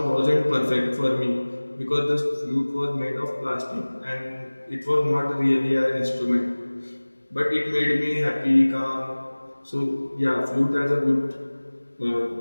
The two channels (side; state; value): both; inverted; correlation -1.00